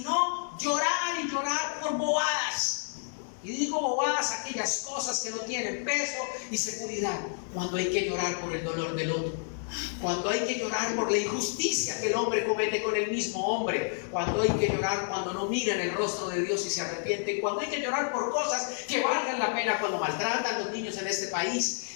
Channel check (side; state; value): right; silent; 58 dB below the other